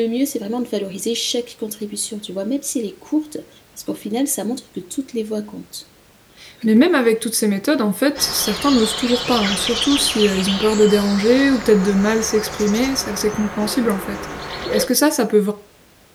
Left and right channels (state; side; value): identical; both; correlation 1.00